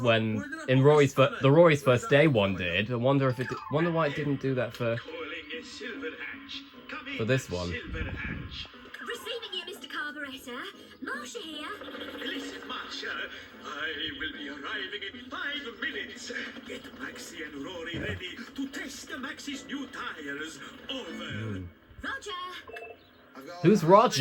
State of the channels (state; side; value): identical; both; correlation 1.00